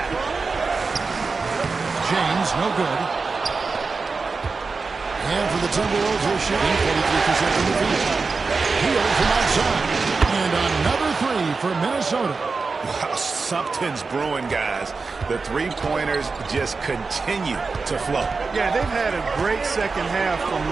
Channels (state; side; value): quieter; left; 4.4 dB